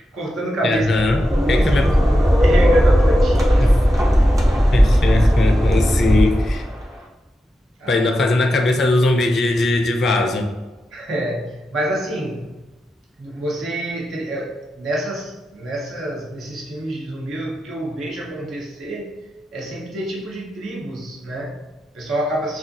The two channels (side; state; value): both; normal; correlation 0.89